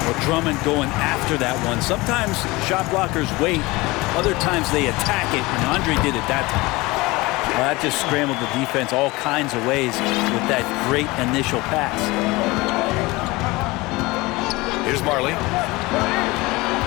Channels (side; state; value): right; quieter; 22.0 dB